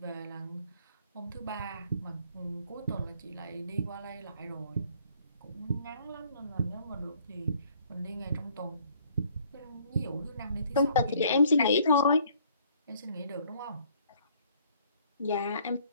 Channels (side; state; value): both; inverted; correlation -0.61